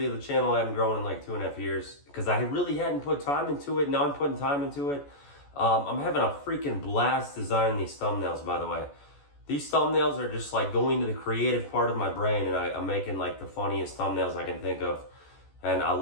the channel hadn't grown in like 2.5 years because I really hadn't put time into it. Now I'm putting time into it. I'm having a freaking blast designing these thumbnails, by the way. These thumbnails are just like going to the creative part of my brain, and I'm making like the funniest thumbnails I can think of. And I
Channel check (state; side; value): late; right; 14 ms